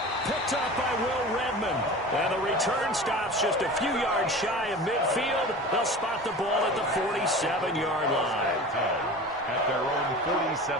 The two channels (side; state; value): both; normal; correlation 0.35